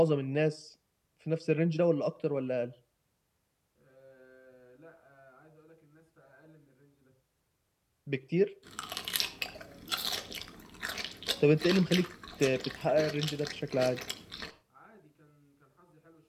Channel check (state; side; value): identical; both; correlation 1.00